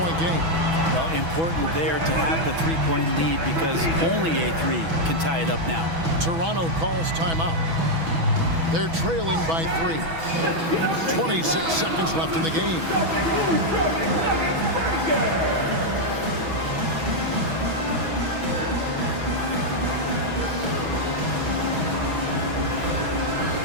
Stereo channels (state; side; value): late; left; 6.1 ms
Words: game. Well, important there to have the 3-point lead because only a 3 can tie it up now. Toronto calls timeout. They're trailing by 3. 26 seconds left in the game.